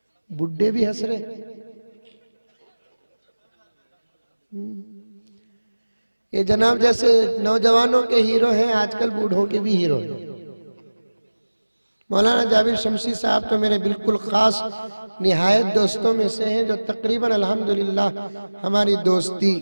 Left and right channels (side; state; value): both; inverted; correlation -1.00